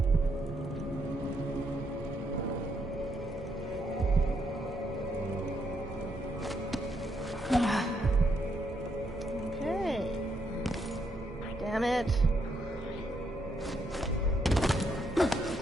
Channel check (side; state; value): both; normal; correlation 0.76